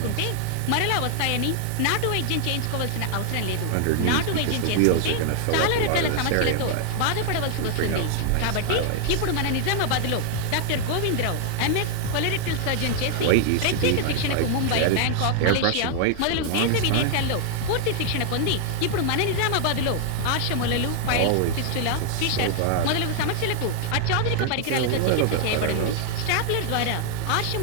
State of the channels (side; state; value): both; different; correlation 0.00